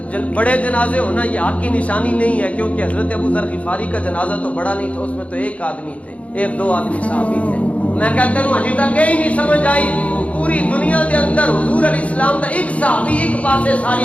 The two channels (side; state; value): right; late; 0.065 ms